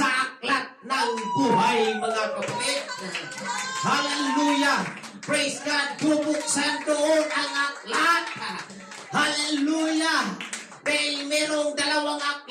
aklat ng buhay, mga kapatid. Hallelujah. Praise God. Bubuksan doon ang aklat. Hallelujah. Dahil merong dalawang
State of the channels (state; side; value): identical; both; correlation 1.00